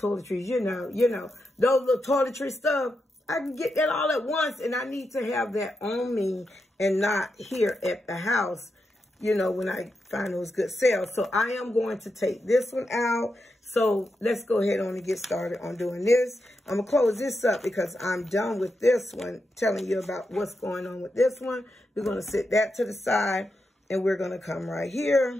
You know, those little toiletry stuff. I can get that all at once, and I need to have that on me and not here at the house, you know, when I find those good sales. So I am going to take this one out. So let's go ahead on and get started on doing this. I'm going to close this up because I'm done with this one, telling you about what's going on with this one. We're going to set that to the side, and we're going to come right here.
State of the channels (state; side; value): normal; both; correlation 0.86